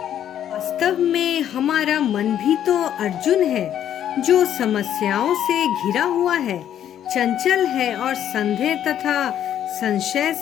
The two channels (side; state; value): right; quieter; 10.4 dB